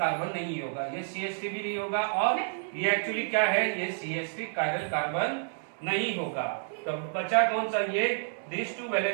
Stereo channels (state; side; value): silent; left; digital silence